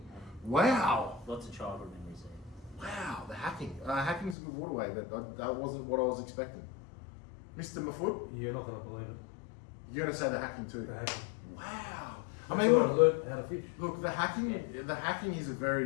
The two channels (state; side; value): drops out; right; at 4.4 s